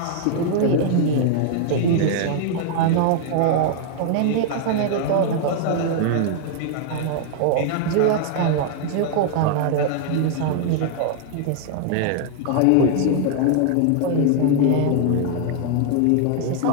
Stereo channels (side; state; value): both; different; correlation 0.00